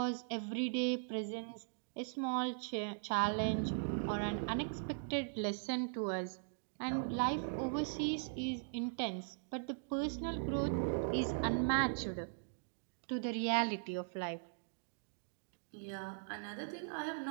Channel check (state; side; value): silent; left; digital silence